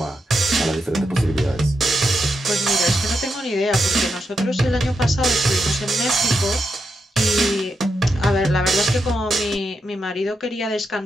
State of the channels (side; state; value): both; normal; correlation 0.84